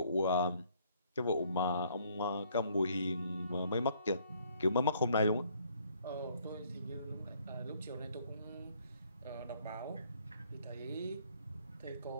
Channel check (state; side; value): inverted; both; correlation -0.64